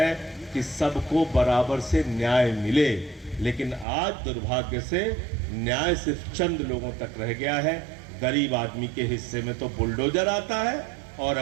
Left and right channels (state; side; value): drops out; left; at 3.9 s